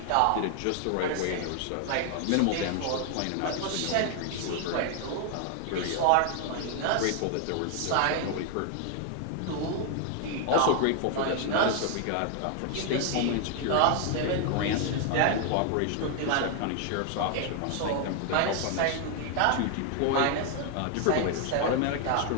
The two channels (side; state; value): both; different; correlation 0.00